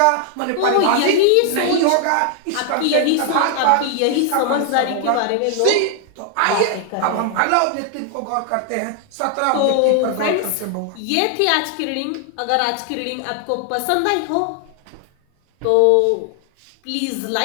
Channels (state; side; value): different; both; correlation 0.00